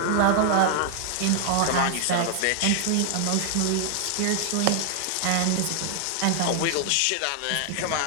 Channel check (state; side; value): different; both; correlation 0.00